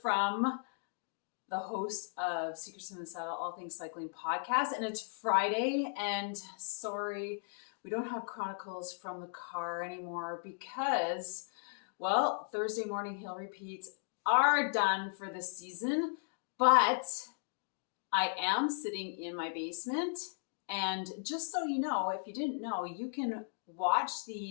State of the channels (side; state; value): right; silent; digital silence